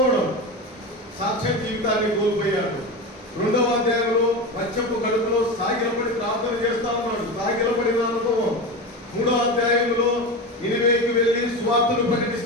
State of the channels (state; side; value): normal; both; correlation 0.23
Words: సాక్ష్య జీవితాన్ని కోల్పోయాడు. 2వ అధ్యాయంలో మత్స్యపు కడుపులో సాగిలపడి ప్రార్థన చేస్తా ఉన్నాడు, సాగిలపడిన అనుభవం. 3వ అధ్యాయంలో నినివేకి వెళ్ళి సువార్తను